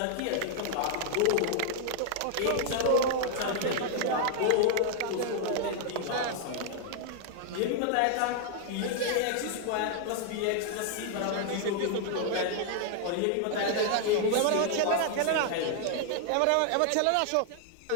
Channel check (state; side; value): different; both; correlation 0.00